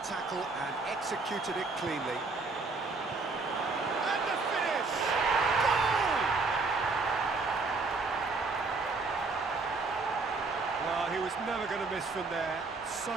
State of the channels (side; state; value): left; quieter; 3.9 dB